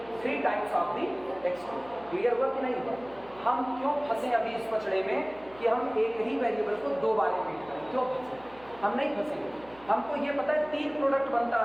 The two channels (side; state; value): right; noise; hum, 24 dB below the sound